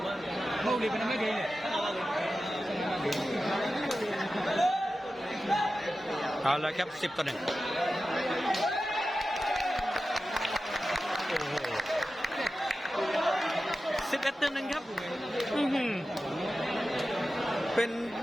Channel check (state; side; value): normal; both; correlation 0.93